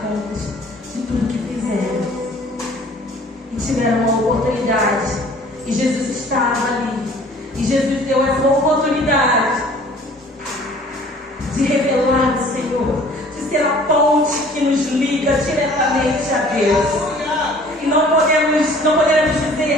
contas de tudo que fizeram. E tiveram uma oportunidade. E Jesus estava ali. E Jesus deu essa oportunidade de revelar o Senhor, de ser a ponte que nos liga diretamente a Deus. E não podemos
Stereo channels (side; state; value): both; normal; correlation 0.52